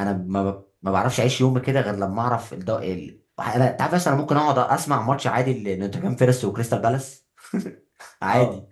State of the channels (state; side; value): identical; both; correlation 1.00